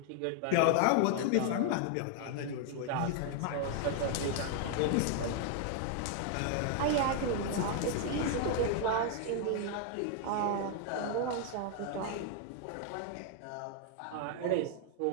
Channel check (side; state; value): both; different; correlation 0.00